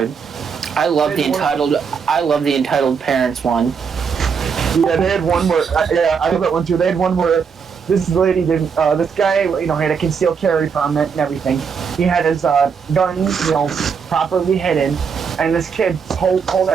I love the entitled parents one. Yeah, they had one where. Yeah, I love that one too. They had one where this lady did. This guy, had a concealed carry permit and everything. He had his guns, properly hidden. And this kid pulled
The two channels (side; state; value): left; quieter; 6.2 dB